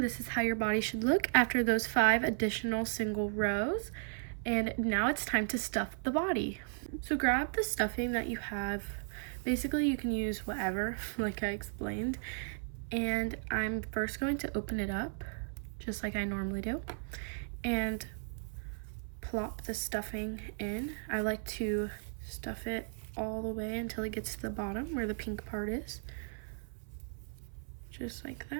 this is how your body should look after those 5 additional single rows. And now it's time to stuff the body. So grab the stuffing that you have. Basically you can use whatever, like I explained. And I'm first going to open it up, just like I normally do, and plop the stuffing in. I like to stuff it all the way until it gets to the bottom where the pink part is. Just like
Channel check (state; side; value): silent; left; 54 dB below the other